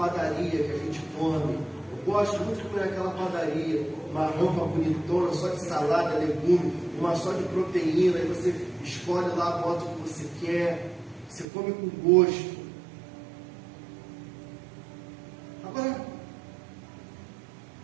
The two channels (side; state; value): left; drops out; at 11.5 s